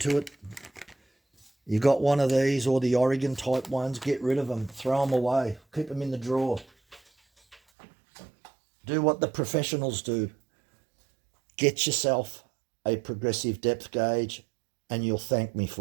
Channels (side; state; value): left; drops out; at 7.6 s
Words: it. You got one of these or the Oregon type ones, get rid of them, throw them away, keep them in the drawer. Do what the professionals do. Get yourself a progressive depth gauge and you'll thank me